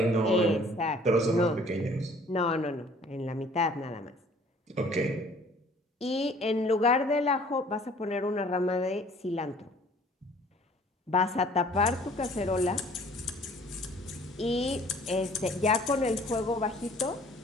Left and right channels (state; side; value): normal; both; correlation 0.54